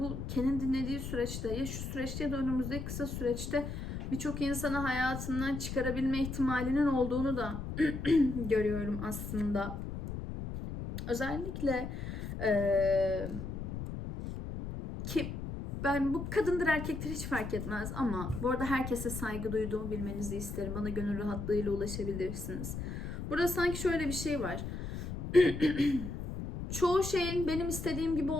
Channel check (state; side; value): noise; left; rumble, 6 dB below the sound